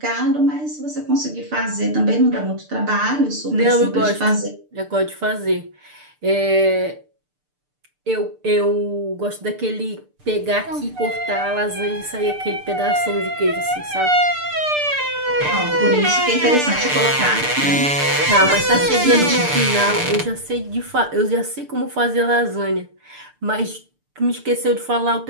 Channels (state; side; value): late; left; 6.7 ms